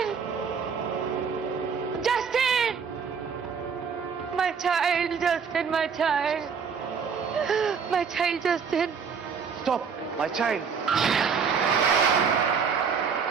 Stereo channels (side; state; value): left; quieter; 6.2 dB